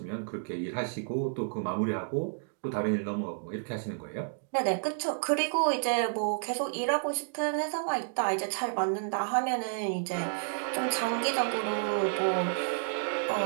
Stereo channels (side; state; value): left; silent; digital silence